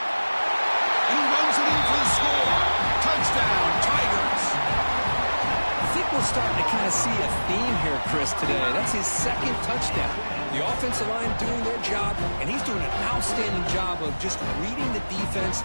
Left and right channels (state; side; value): inverted; both; correlation -1.00